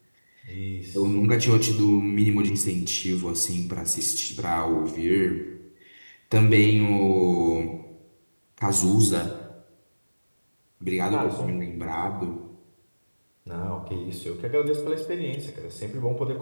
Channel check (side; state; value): both; inverted; correlation -1.00